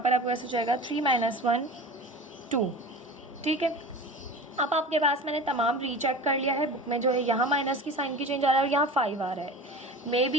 आपके पास हो जाएगा 3 - 1 2। ठीक है, अब आपके पास मैंने तमाम रीचेक कर लिया है। बुक में जो है यहाँ माइनस की साइन की चेंज आ रहा है और यहाँ 5 आ रहा है। मे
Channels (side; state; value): both; normal; correlation 0.34